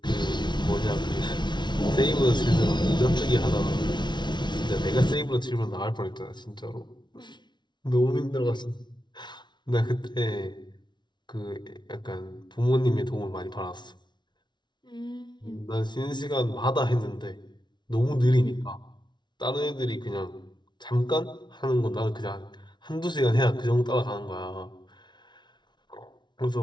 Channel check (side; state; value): right; late; 0.21 ms